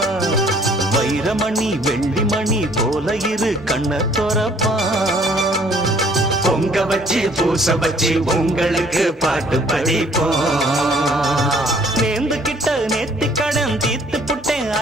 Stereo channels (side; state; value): both; normal; correlation 0.59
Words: வைரமணி வெள்ளிமணி போல இரு கண்ண தொறப்பான். பொங்க வச்சு பூச வச்சு உங்களுக்கு பாட்டு படிப்போம். நேர்ந்து கிட்ட நேத்தி கடன் தீர்த்து புட்டேன்